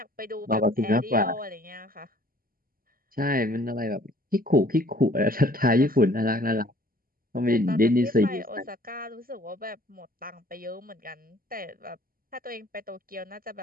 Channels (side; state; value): left; late; 0.42 ms